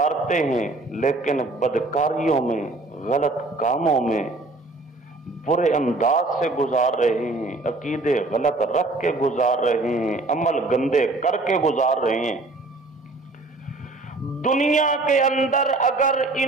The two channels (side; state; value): left; quieter; 3.1 dB